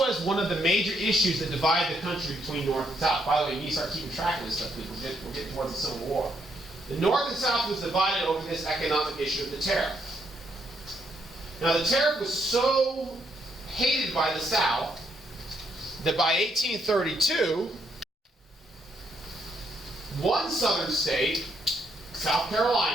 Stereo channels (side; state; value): both; normal; correlation 0.74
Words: one of the major issues that divided the country between North and South. By the way, you need to start keeping track of this stuff because we're getting towards the Civil War. The North and South was divided over this economic issue of the tariff. Now, the tariff was so hated by the South that by 1832, one southern state, South